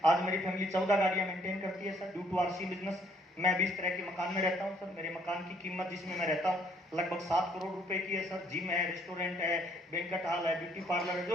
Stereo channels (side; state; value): both; normal; correlation 0.65